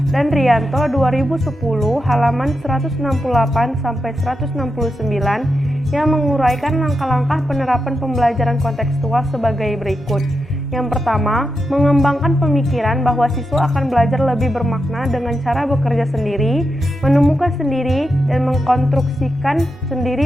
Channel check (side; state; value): both; normal; correlation 0.87